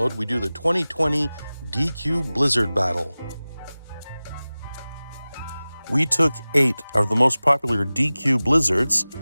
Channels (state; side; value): inverted; both; correlation -0.98